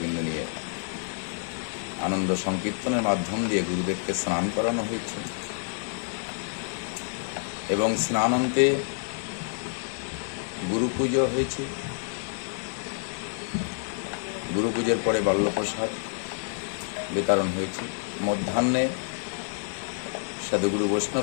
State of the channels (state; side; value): silent; right; 59 dB below the other